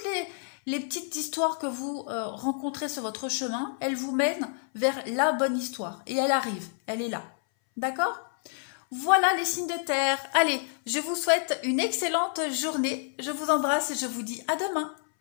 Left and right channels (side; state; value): right; silent; 59 dB below the other